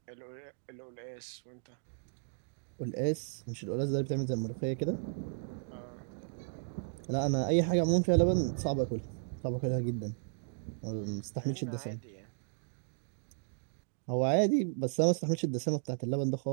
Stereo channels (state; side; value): silent; left; digital silence